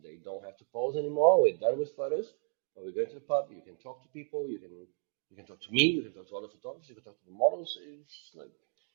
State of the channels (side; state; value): left; silent; 55 dB below the other